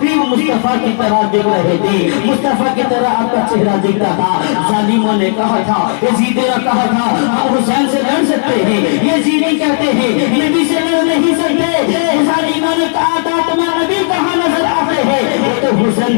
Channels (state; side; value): silent; right; digital silence